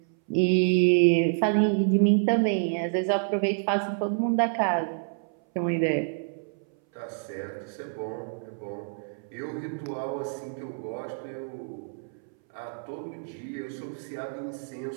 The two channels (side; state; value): left; silent; 59 dB below the other